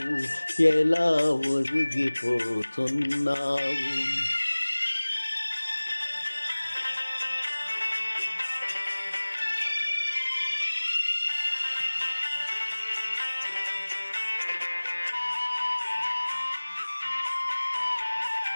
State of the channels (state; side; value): inverted; both; correlation -1.00